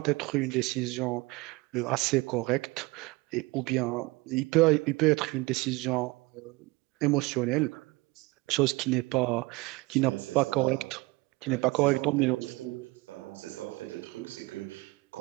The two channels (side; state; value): left; quieter; 23.0 dB